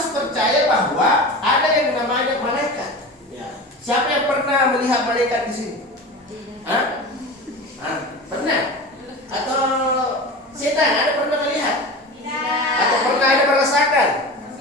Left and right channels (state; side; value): normal; both; correlation 0.31